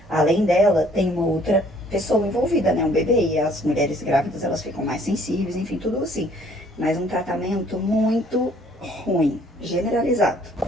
além dela, tem uma outra pessoa envolvida, né, um bebê, e as mulheres grávidas, elas ficam mais sensíveis, enfim, tudo assim, mas um tratamento muito ruim, generalizado.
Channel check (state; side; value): normal; both; correlation 0.60